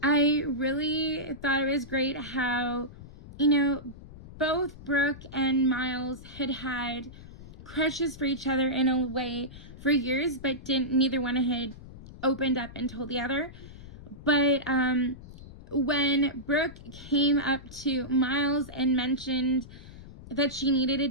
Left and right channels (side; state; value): left; noise; rumble, 16 dB below the sound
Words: I really thought it was great how, both Brooke and Miles had crushes for each other in a way for years, but neither one had opened up and told the other. But when Brooke came up to Miles and mentioned that she needed a